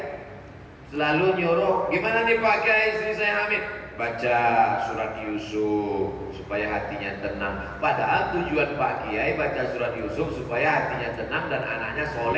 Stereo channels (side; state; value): both; identical; correlation 1.00